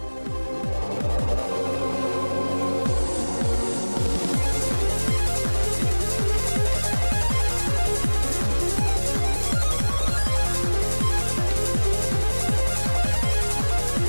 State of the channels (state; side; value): inverted; both; correlation -1.00